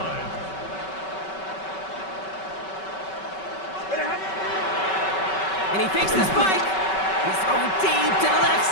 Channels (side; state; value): right; late; 5.3 ms